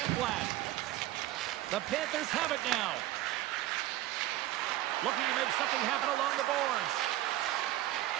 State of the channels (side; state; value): left; quieter; 15.2 dB